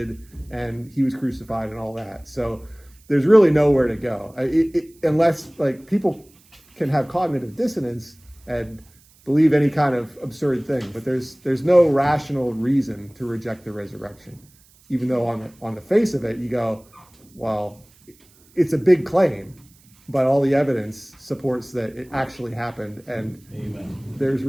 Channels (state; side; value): noise; right; hiss, 29 dB below the sound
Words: and he was crucified and all that. So there's really nowhere to go, unless like people can have cognitive dissonance and believe any kind of absurd thing. But there's no rational reason to reject the resurrection, even though on the face of it you go, well, it's a big claim, but all the evidence supports that it actually happened, and there's